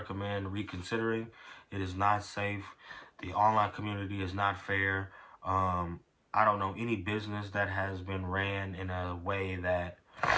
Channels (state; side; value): identical; both; correlation 1.00